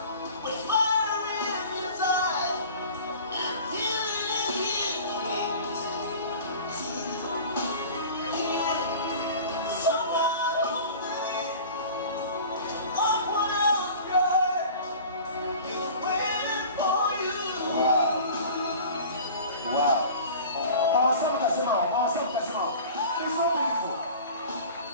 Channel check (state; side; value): inverted; both; correlation -0.41